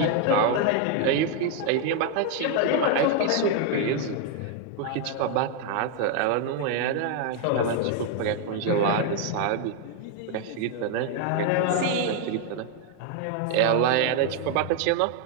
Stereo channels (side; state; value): both; different; correlation 0.01